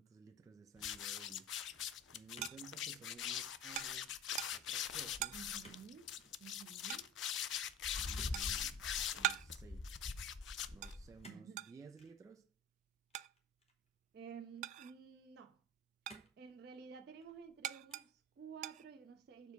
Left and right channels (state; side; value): normal; both; correlation 0.31